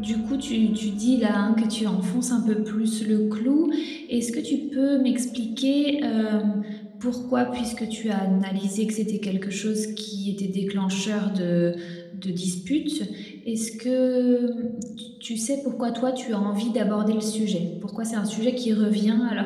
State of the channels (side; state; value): both; identical; correlation 1.00